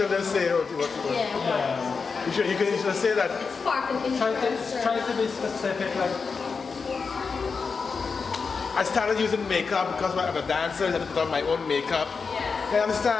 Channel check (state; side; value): quieter; right; 5.1 dB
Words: don't say what you want. Yeah. You can just say that. It's spark and interest. Try to be specific, like I started using makeup because I'm a dancer. I had to put on my own makeup. Yeah. You